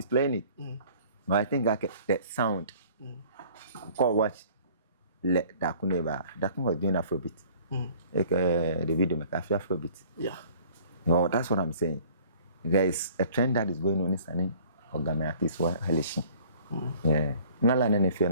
playing it. But I think that sound. Call watch let that could never that was doing Afrobeat. The video make Afrobeat. Yeah. No, that's what I'm saying. There is a trend that is going on in Sani or Ghana artists who are Halishi. Yeah. Nala nene fear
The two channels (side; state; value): both; inverted; correlation -0.52